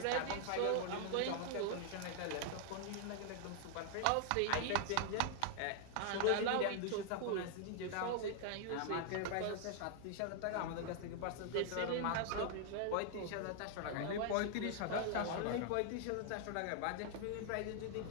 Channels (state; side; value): different; both; correlation 0.00